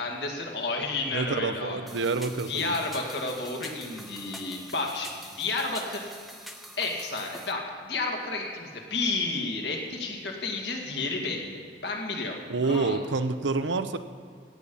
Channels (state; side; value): normal; both; correlation 0.09